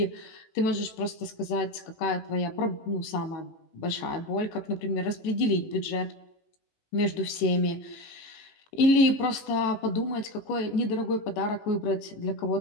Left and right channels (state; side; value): late; right; 18 ms